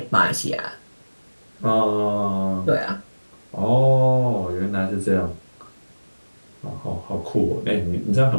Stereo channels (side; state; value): both; inverted; correlation -1.00